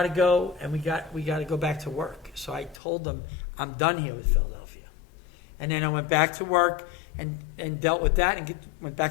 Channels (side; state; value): right; drops out; at 2.8 s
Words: to go, and we got to go back to work. So I told them, I'm done here with Philadelphia. And then I went back to work and dealt with that and went